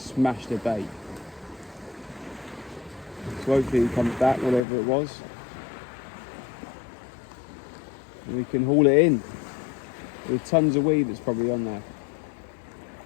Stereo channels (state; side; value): drops out; right; at 4.6 s